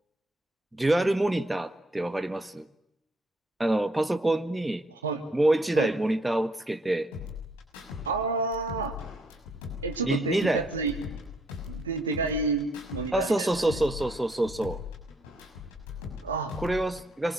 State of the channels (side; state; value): both; normal; correlation 0.70